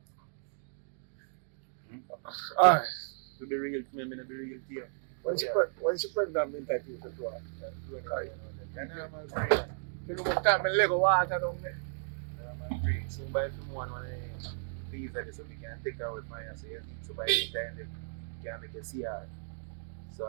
Alright. To be real, to me, I be real here. When she put that mean that you could do it. You know my brain. You know what time I Lego water down there? My brain. So by film one when I please that so we can take out with my so you need to buy any time that you can make a CR.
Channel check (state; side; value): silent; left; digital silence